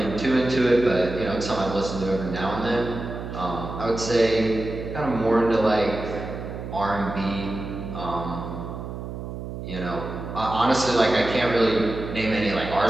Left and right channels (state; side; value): noise; right; hum, 8 dB below the sound